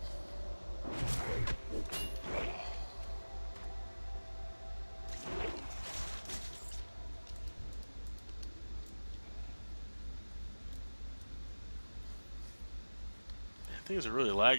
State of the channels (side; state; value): both; inverted; correlation -1.00